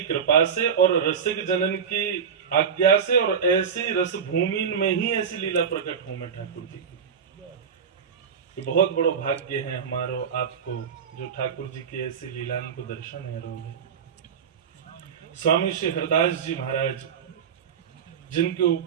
कृपा से और रसिक जनन की आज्ञा से और ऐसी रस भूमि में ही ऐसी लीला प्रकट हो में ठाकुर जी की। ये बहुत बड़ो भाग्य है हमारो आपको जो ठाकुर जी की ऐसी लीलाओं को दर्शन है रोगे। स्वामी श्री हरदास जी महाराज, जिनके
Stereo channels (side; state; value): left; quieter; 7.0 dB